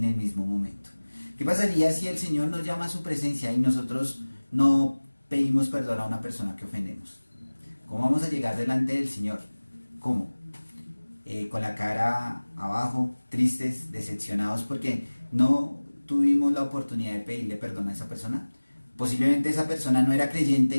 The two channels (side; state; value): both; inverted; correlation -1.00